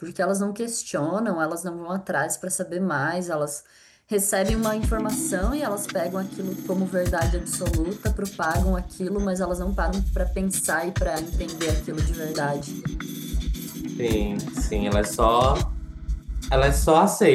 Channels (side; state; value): both; identical; correlation 1.00